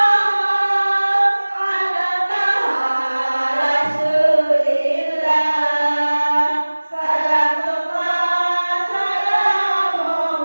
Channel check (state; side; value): inverted; both; correlation -1.00